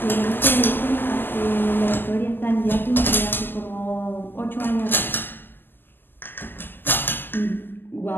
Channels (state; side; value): late; right; 0.093 ms